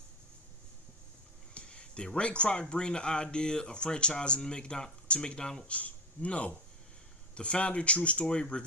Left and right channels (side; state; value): both; normal; correlation 0.20